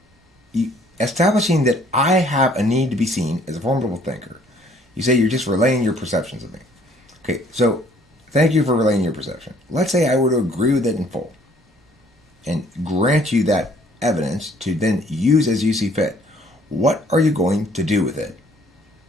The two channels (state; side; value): normal; both; correlation 0.60